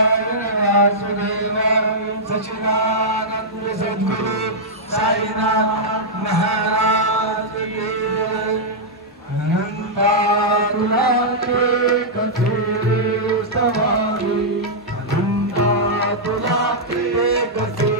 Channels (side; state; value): both; normal; correlation -0.09